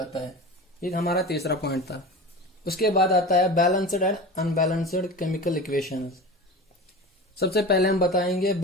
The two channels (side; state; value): both; normal; correlation 0.31